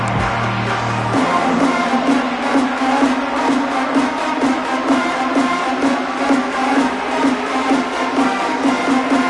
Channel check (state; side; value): identical; both; correlation 1.00